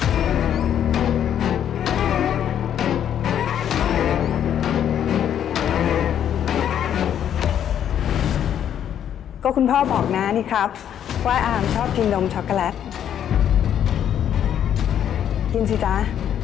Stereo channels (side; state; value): right; quieter; 9.7 dB